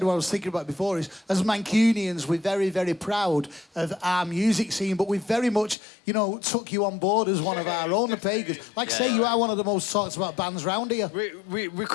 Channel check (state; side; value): drops out; right; at 5.8 s